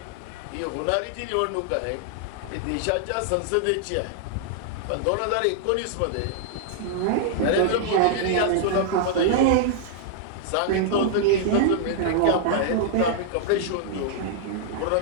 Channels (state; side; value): different; both; correlation -0.01